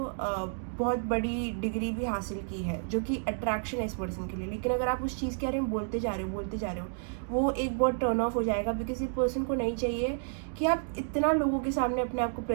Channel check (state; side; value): silent; left; digital silence